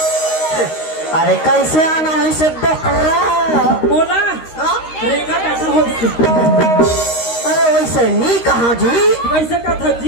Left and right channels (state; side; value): late; right; 13 ms